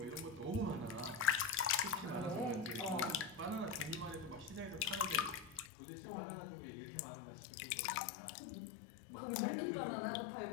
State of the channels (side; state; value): right; drops out; at 5.7 s